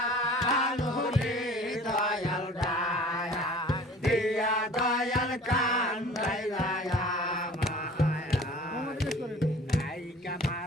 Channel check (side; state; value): both; normal; correlation 0.46